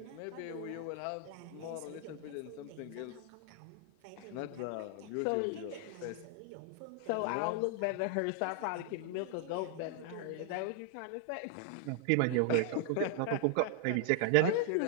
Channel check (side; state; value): both; different; correlation 0.00